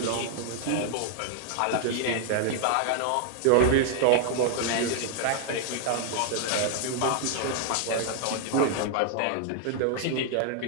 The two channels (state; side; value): different; both; correlation 0.00